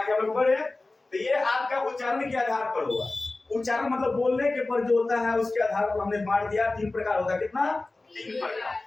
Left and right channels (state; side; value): quieter; right; 3.2 dB